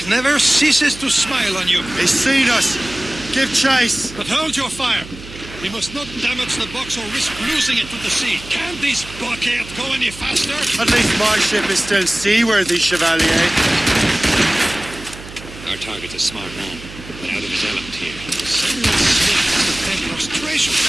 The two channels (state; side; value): noise; right; hum, 15 dB below the sound